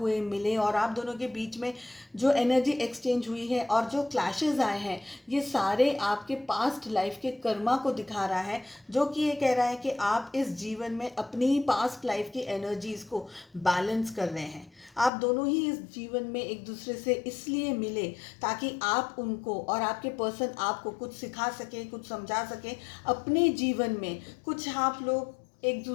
मिले और आप दोनों के बीच में जो एनर्जी एक्सचेंज हुई है और जो क्लैशेस आए हैं, ये सारे आपके पास्ट लाइफ के कर्मा को दिखा रहा है, जो कि ये कह रहा है कि आप इस जीवन में अपनी पास्ट लाइफ की एनर्जीज को बैलेंस कर रहे हैं। आप दोनों ही इस जीवन में एक दूसरे से इसलिए मिले ताकि आप उनको और आपके पर्सन आपको कुछ सिखा सके, कुछ समझा सके, अपने जीवन में कुछ आप लोग एक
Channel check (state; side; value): drops out; right; at 15.1 s